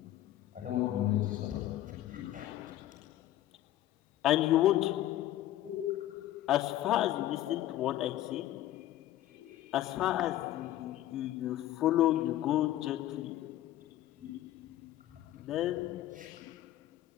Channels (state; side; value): quieter; right; 13.8 dB